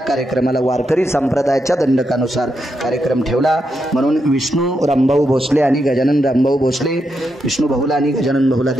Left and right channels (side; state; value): both; normal; correlation 0.83